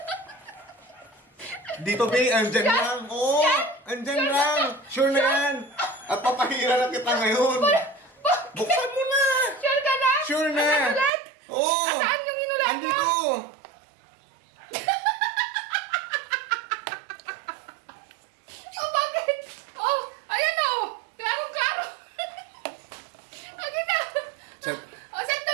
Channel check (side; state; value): left; drops out; at 11.1 s